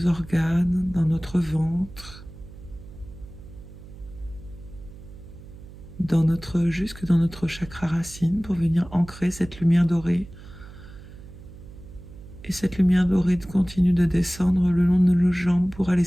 organes, dans notre ventre, jusque dans notre chakra racine pour venir ancrer cette lumière dorée. Et cette lumière dorée continue de descendre le long de nos jambes pour aller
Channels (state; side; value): noise; right; hum, 17 dB below the sound